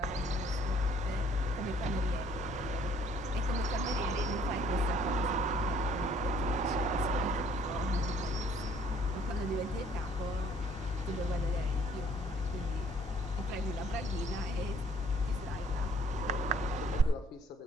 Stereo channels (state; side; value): normal; both; correlation 0.60